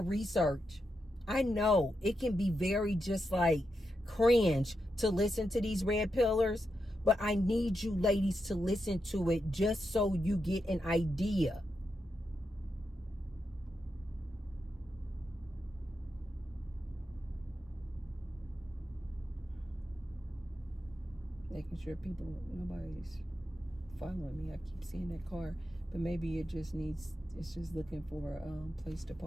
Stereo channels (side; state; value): both; normal; correlation 0.86